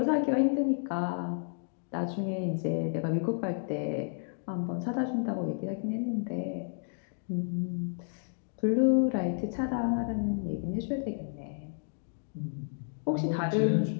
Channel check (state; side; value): silent; right; digital silence